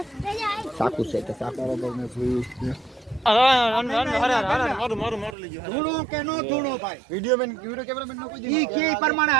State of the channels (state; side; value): drops out; left; at 5.4 s